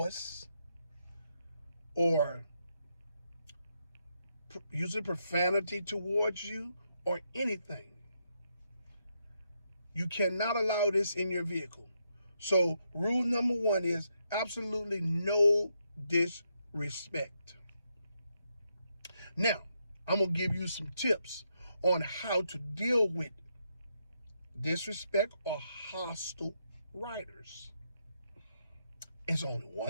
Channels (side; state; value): both; inverted; correlation -0.80